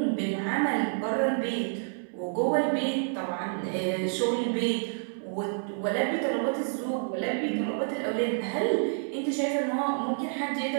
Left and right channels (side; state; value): left; silent; 59 dB below the other